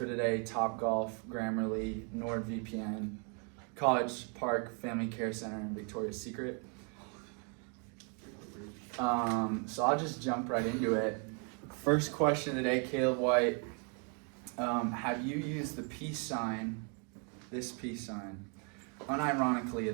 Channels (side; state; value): left; quieter; 37.9 dB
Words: today, Topgolf, Grammarly, NordVPN, College Park Family Care Center, and Victoria's Secret. So I'll just jump right into it. First question today, Caleb White. Have you used the peace sign, this peace sign, unironically